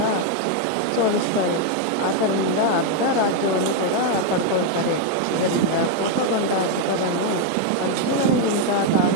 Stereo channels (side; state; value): both; different; correlation 0.01